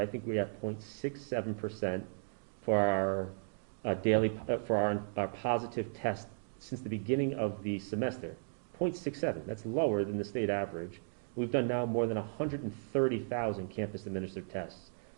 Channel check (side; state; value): left; silent; digital silence